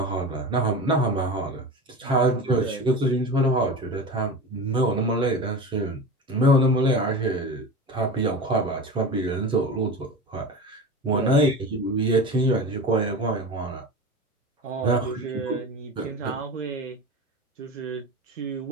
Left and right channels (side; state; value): both; normal; correlation 0.29